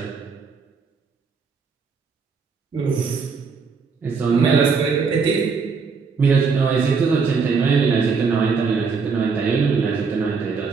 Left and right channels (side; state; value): left; quieter; 5.2 dB